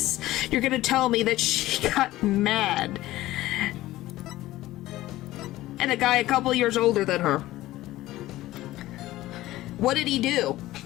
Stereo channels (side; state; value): right; quieter; 16.3 dB